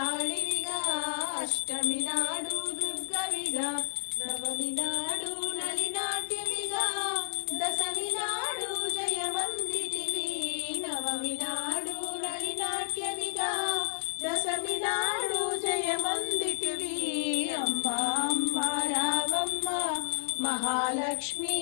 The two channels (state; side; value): silent; right; 57 dB below the other